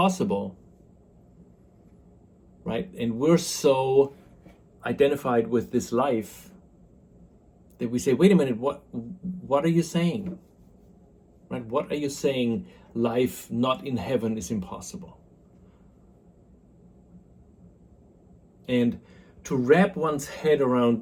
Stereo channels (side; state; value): both; identical; correlation 1.00